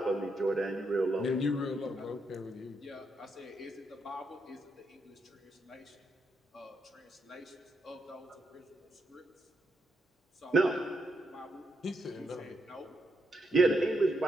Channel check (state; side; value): normal; both; correlation 0.80